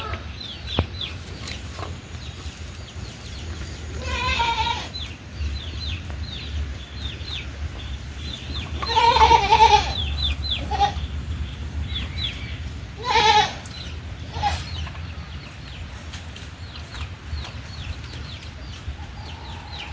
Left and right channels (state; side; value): identical; both; correlation 1.00